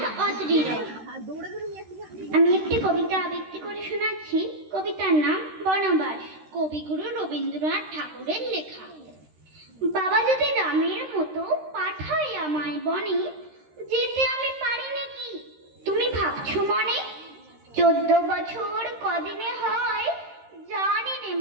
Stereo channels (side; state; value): left; late; 13 ms